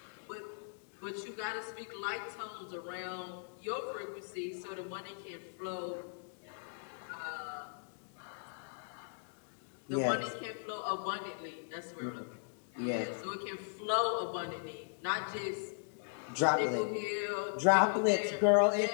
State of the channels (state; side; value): silent; right; digital silence